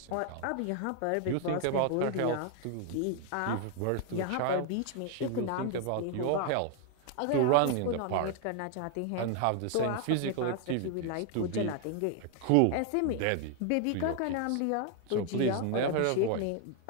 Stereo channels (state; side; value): different; both; correlation 0.00